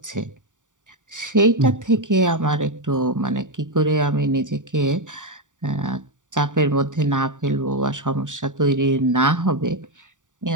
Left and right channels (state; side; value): late; left; 0.87 ms